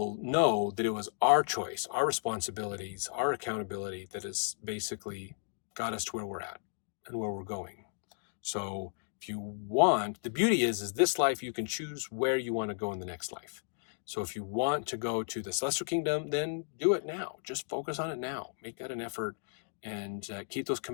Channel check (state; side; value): silent; right; digital silence